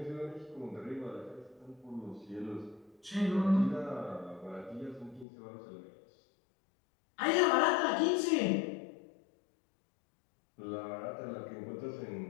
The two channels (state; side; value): drops out; right; at 5.2 s